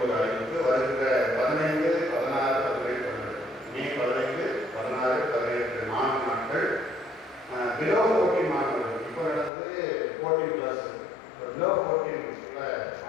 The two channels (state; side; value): drops out; right; at 9.5 s